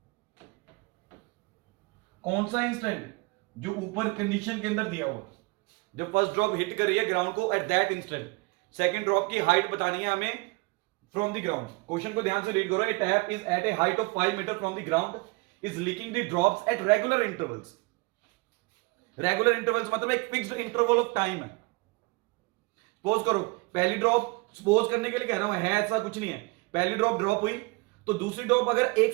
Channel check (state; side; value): quieter; left; 26.7 dB